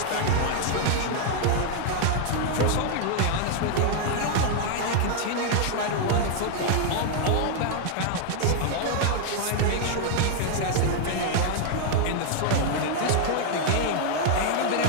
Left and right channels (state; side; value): different; both; correlation 0.00